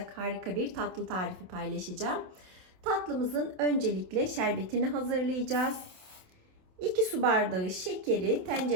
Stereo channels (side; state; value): left; late; 27 ms